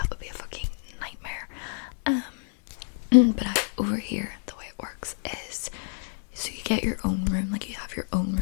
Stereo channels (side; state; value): right; silent; 56 dB below the other